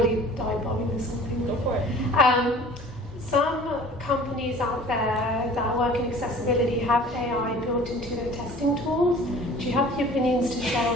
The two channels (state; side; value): normal; both; correlation 0.46